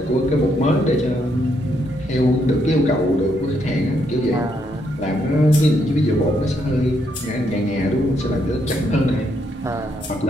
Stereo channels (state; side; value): normal; both; correlation 0.76